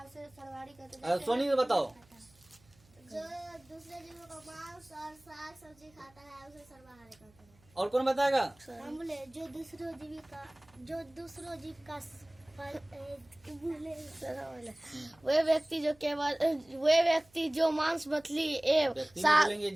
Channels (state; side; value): noise; right; hum, 29 dB below the sound